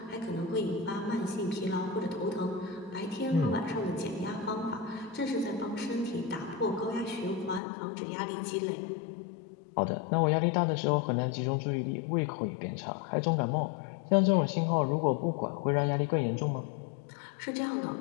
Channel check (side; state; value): right; drops out; at 7.6 s